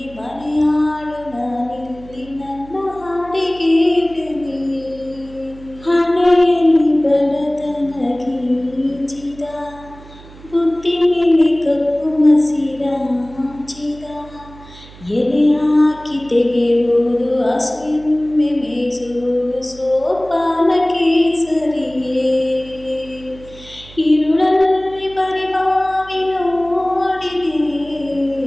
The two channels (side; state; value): right; noise; hum, 20 dB below the sound